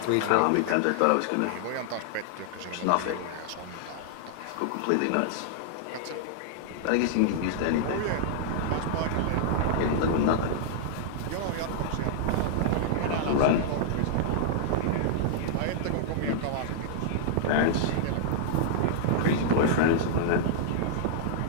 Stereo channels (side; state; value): both; different; correlation -0.01